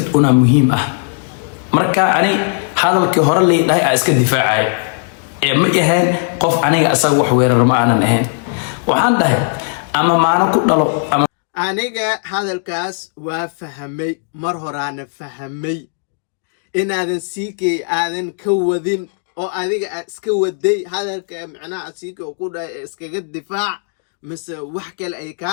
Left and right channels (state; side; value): silent; right; digital silence